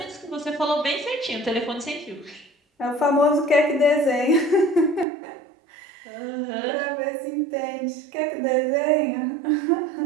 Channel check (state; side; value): drops out; left; at 5.1 s